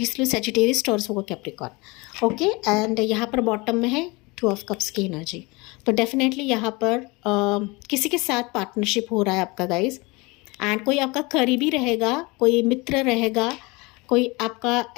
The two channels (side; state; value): right; quieter; 25.4 dB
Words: लियो सजिटेरियस, टॉरस होगा कैप्रिकॉर्न। ओके, एंड यहाँ पर बॉटम में है 2 ऑफ कप्स की एनर्जी। तो डेफिनेटली यहाँ पर किसी के साथ पार्टनरशिप हो रहा है आपका गाइज, एंड कोई आपका करीबी रहेगा, कोई मित्र रहेगा, कोई आपका